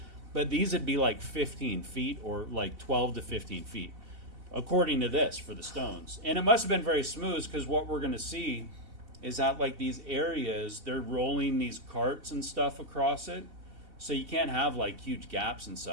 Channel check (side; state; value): left; late; 4.0 ms